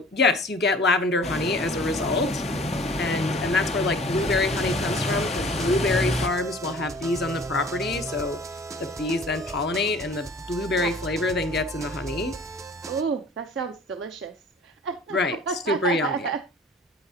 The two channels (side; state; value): both; normal; correlation 0.48